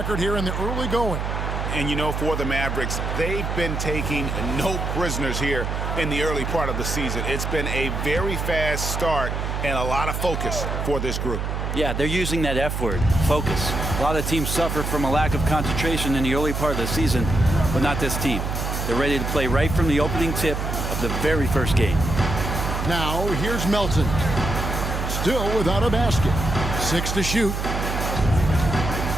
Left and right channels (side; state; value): right; noise; hum, 2 dB below the sound